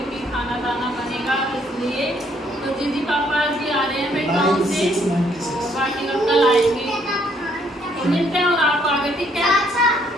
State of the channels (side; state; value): both; normal; correlation 0.67